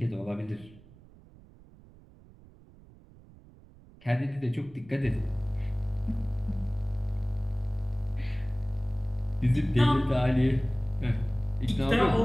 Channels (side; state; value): right; noise; rumble, 23 dB below the sound